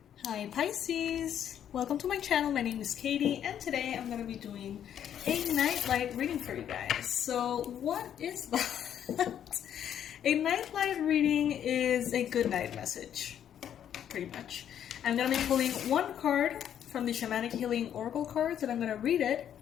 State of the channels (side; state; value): right; quieter; 9.7 dB